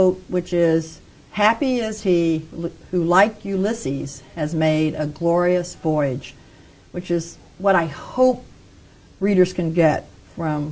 which is, "Happy is he who, like Ulysses, has made a glorious voyage," which is what I hope readers can get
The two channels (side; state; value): both; identical; correlation 1.00